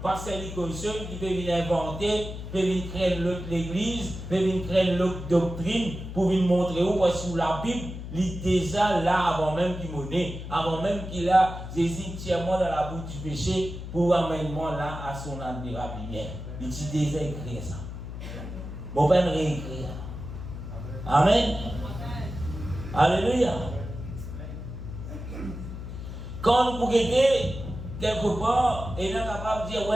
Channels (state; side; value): noise; left; hum, 9 dB below the sound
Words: pasteur Nicolson, qui peut venir inventer, peut venir créer l'autre l'église, peut venir créer l'autre doctrine, pour venir montrer où, parce que la Bible, il est déjà là avant même qu'il m'ait, avant même qu'il a Jésus entièrement dans la bouche du péché, pour amener moi là à son admirable lumière. Il est déjà écrit ça. Bon, ben réécrire. Amen. Alléluia. Quand vous regardez quelque part, et là, capable de dire,